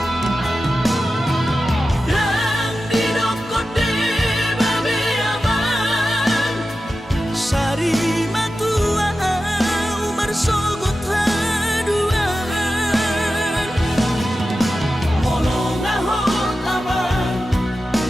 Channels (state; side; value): normal; both; correlation 0.92